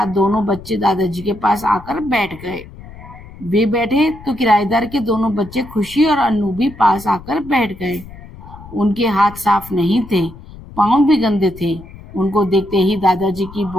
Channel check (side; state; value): left; noise; rumble, 17 dB below the sound